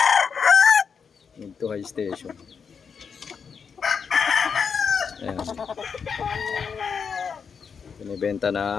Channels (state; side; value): quieter; right; 6.3 dB